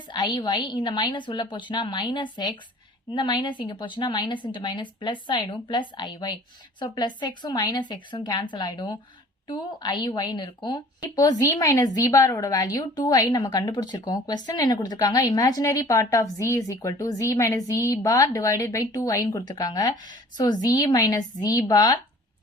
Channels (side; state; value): both; normal; correlation 0.49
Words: iy, இந்த மைனஸ் உள்ள போச்சுன்னா minus x, இந்த மைனஸ் இங்க போச்சுன்னா மைனஸ் இன்ட்டு மைனஸ் பிளஸ் ஆயிடும் பிளஸ் iy. So, பிளஸ் எக்ஸும் மைனஸ் எக்ஸும் கேன்சல் ஆயிடும். 2iy இருக்கும். இப்போ z minus z bar ஓட வேல்யூ 2i நம்ம கண்டுபிடிச்சிருக்கோம். question என்ன கொடுத்திருக்காங்க? imaginary part of z is equal to z minus z bar divided by 2i ன்னு கொடுத்திருக்காங்க. So, z minus z bar